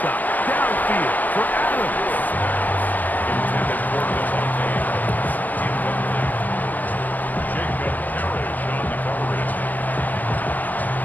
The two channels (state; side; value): late; right; 0.082 ms